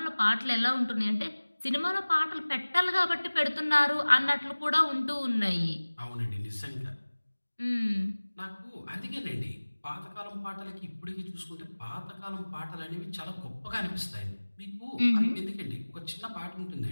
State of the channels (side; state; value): both; inverted; correlation -1.00